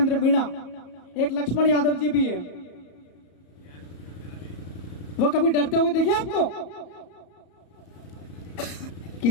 मीणा, एक लक्ष्मण यादव जी भी है। वो कभी डरते हुए देखिए आपको?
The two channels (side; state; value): right; late; 34 ms